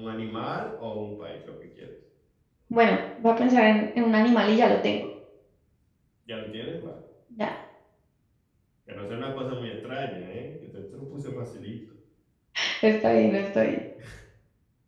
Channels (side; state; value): both; identical; correlation 1.00